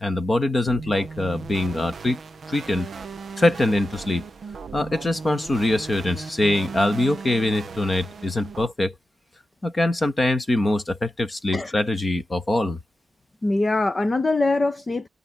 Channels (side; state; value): both; normal; correlation 0.92